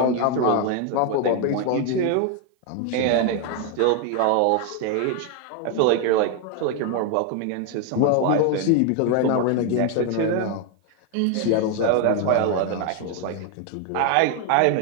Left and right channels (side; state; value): both; different; correlation 0.01